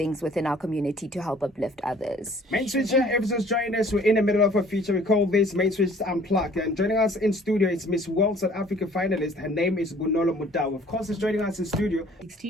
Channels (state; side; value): normal; both; correlation 0.54